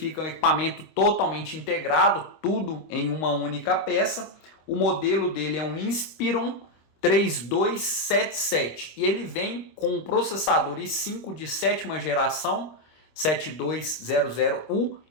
um equipamento totalmente integrado, tudo em uma única peça. O modelo dele é um Inspiron 3277 e ele vem com um processador i5 de sétima geração 7200U.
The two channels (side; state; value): right; late; 26 ms